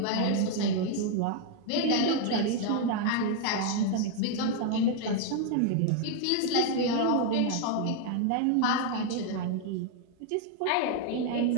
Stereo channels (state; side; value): different; both; correlation 0.00